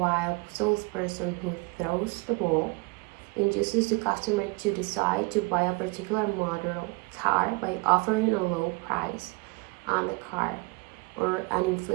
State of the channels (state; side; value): quieter; left; 26.9 dB